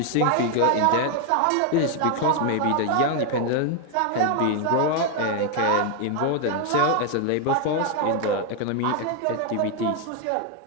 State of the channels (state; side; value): different; both; correlation 0.01